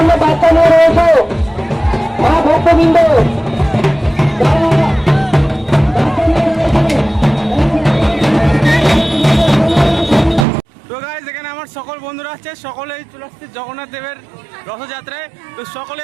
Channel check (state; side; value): drops out; left; at 10.5 s